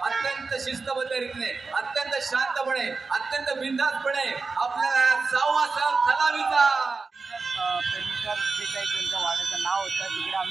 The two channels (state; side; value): quieter; left; 4.2 dB